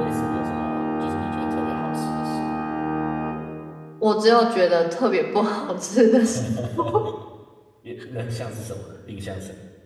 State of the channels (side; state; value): both; identical; correlation 1.00